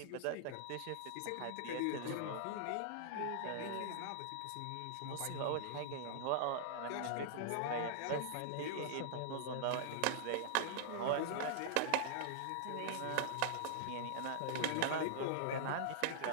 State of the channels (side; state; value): both; different; correlation -0.01